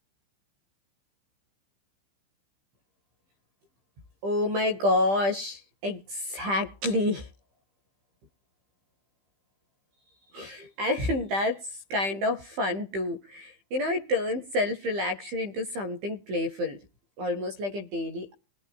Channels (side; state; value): left; late; 15 ms